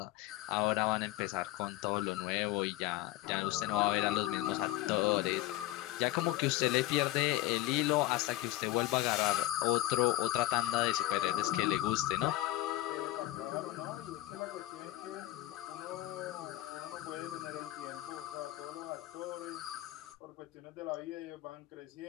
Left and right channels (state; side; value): quieter; right; 16.3 dB